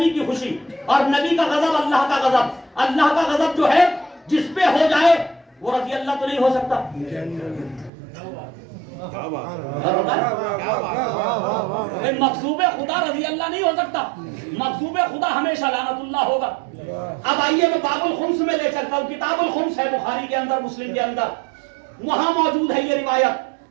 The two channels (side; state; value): left; drops out; at 7.9 s